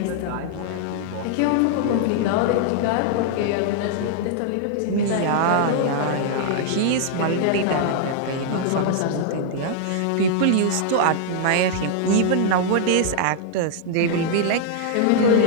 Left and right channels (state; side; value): different; both; correlation -0.01